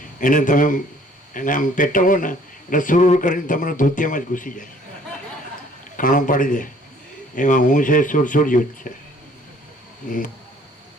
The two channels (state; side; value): normal; both; correlation 0.57